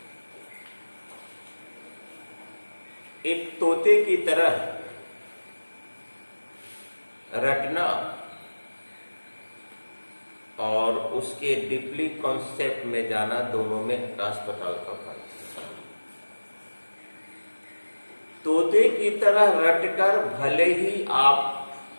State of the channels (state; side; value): inverted; both; correlation -1.00